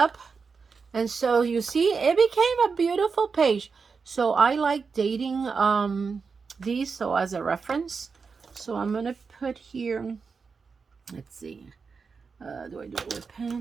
And so you see, it became a beautiful page. So I like dating these, so as a reference. So I'm going to put here, let's see. Do I do it with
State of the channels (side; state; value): left; quieter; 5.1 dB